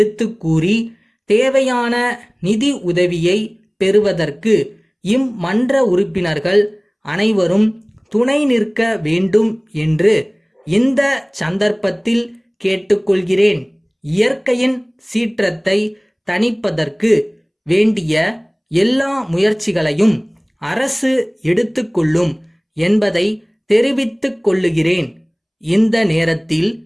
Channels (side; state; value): both; identical; correlation 1.00